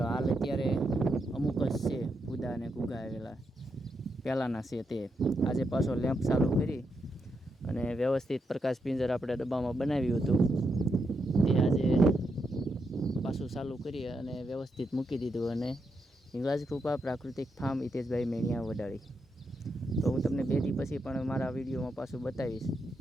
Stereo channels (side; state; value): both; normal; correlation 0.83